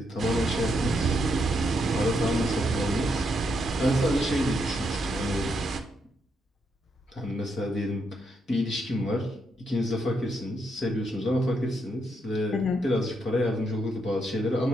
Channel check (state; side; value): normal; both; correlation 0.78